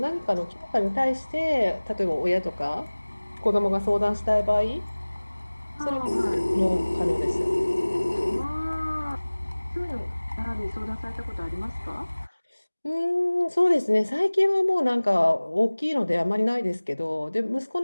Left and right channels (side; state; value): both; inverted; correlation -1.00